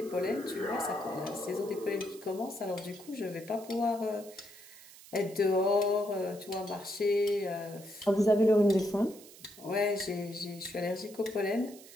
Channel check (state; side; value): noise; right; hiss, 19 dB below the sound